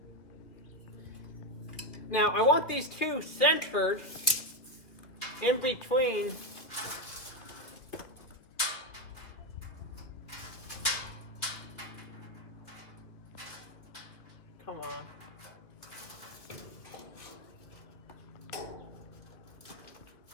Now I want these two centered in between. Come on.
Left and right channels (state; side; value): late; right; 2.1 ms